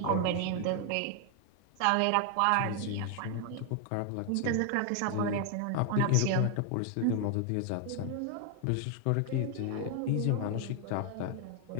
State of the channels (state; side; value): different; both; correlation 0.00